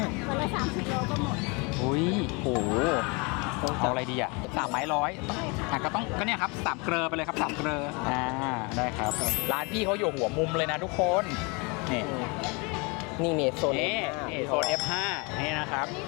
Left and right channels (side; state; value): right; quieter; 29.8 dB